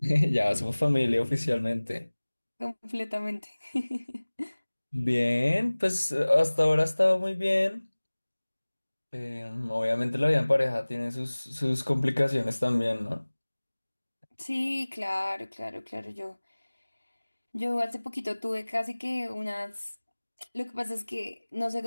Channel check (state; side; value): inverted; both; correlation -1.00